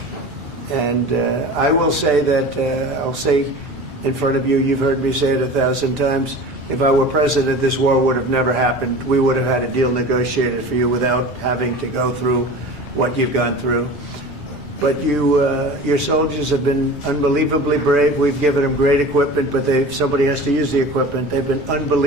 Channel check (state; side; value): normal; both; correlation 0.36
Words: And I will say that, I'll say in front of you, you've heard me say it 1,000 times, if I were president, this war would have never happened. We would have had a deal negotiated for you without having to go through what you've gone through. But your soldiers have been unbelievably brave. We've given them great equipment, but somebody has to use the equipment. They've been